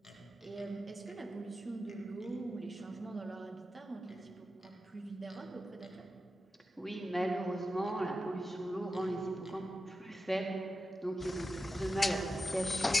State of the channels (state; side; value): normal; both; correlation 0.91